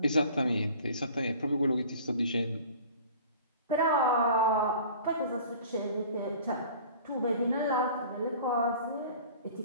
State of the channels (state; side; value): inverted; both; correlation -0.45